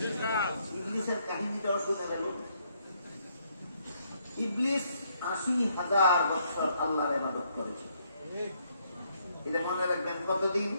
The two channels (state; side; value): inverted; both; correlation -0.72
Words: ইবলিসের কাহিনীটাও শুনে গেল। ইবলিস 80,000 বছর আল্লাহর ইবাদত করেছে। এটা মনে রাখবেন, কতদিন?